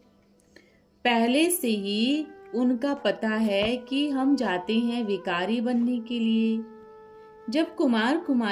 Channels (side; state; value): both; identical; correlation 1.00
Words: पहले से ही उनका पता है कि हम जाते हैं विकारी बनने के लिए। जब कुमार